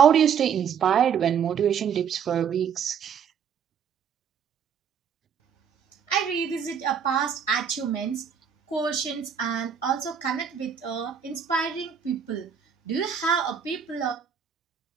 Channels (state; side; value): quieter; left; 7.6 dB